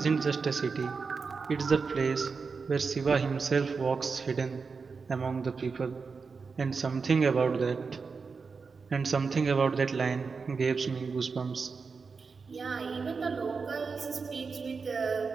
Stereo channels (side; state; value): left; quieter; 4.9 dB